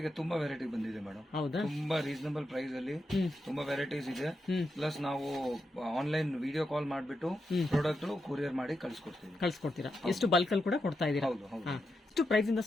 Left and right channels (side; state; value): both; normal; correlation 0.86